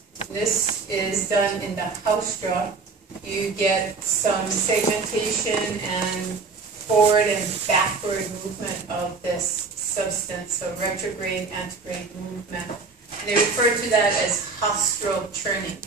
This is done in the haustra. You get some segmentation and forward and backward movement of this substance, so retrograde, antegrade movement. And they refer to that as haustral churning,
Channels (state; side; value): quieter; left; 4.4 dB